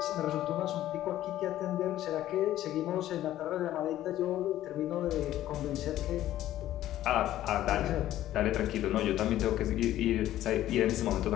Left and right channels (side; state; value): right; quieter; 13.4 dB